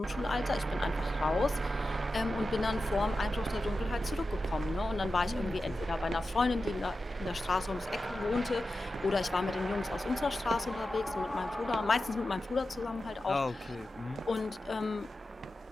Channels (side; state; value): both; normal; correlation 0.92